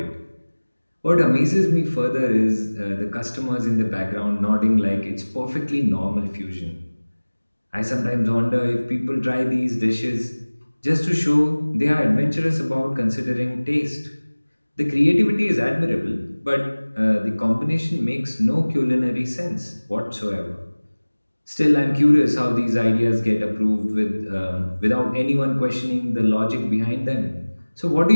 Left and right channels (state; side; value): inverted; both; correlation -1.00